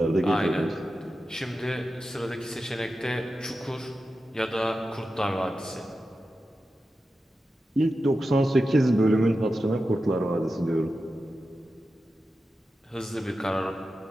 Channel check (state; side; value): normal; both; correlation 0.92